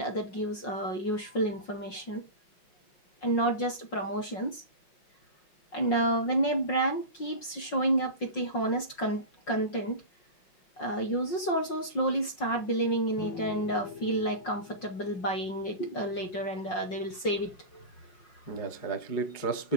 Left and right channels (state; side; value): late; right; 5.5 ms